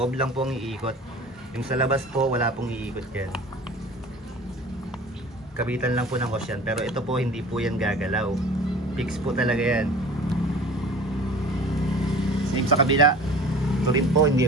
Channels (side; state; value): both; normal; correlation 0.42